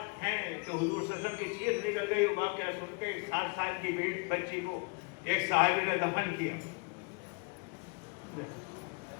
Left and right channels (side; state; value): right; quieter; 32.2 dB